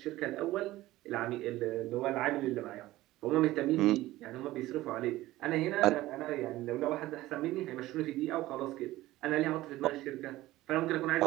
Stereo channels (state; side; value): quieter; left; 16.8 dB